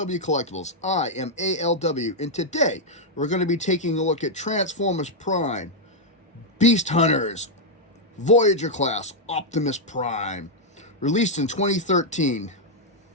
Collectibles. I am ALW, and today we're going to be taking a look at Transformers Prime, Beast Hunters, Voyager class, Optimus Prime, released in 2013.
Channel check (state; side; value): normal; both; correlation -0.02